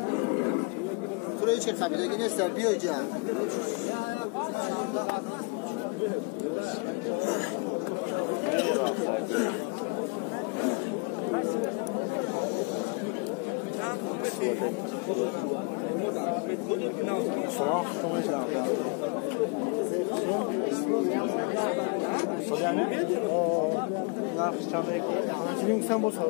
Burayı çek tabii de yine serpiyor can. Soğuk konuşacağım ya. Hocam ne? Ne yapacağım belki? Şimdi sen bu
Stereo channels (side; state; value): right; quieter; 31.8 dB